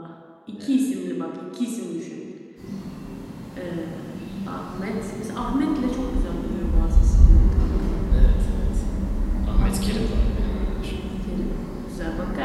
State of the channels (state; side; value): identical; both; correlation 1.00